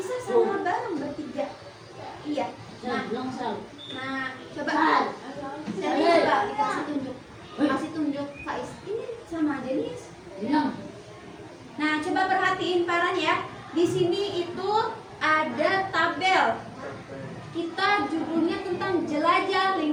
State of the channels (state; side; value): identical; both; correlation 1.00